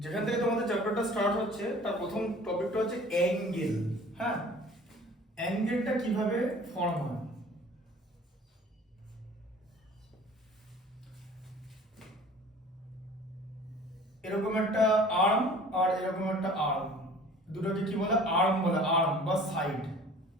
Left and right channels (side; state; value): both; normal; correlation 0.47